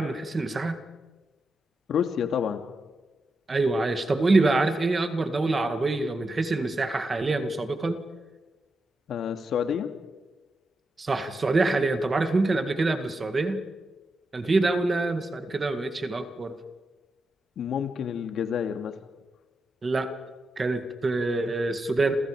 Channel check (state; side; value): normal; both; correlation 0.87